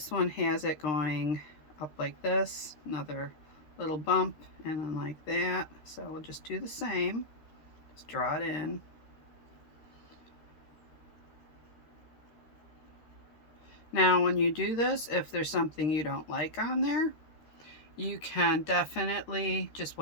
one has it going up like this, another little bump, and then like that. So we'll just do the same, just draw it in. Now when you do this, if there's something you don't like on there, you can definitely just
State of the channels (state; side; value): late; right; 13 ms